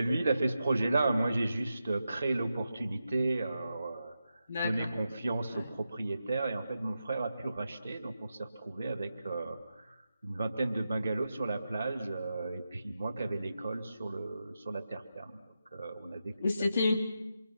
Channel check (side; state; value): both; inverted; correlation -0.88